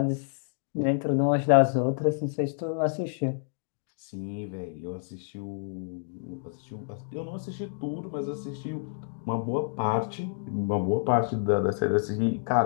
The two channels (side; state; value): right; silent; digital silence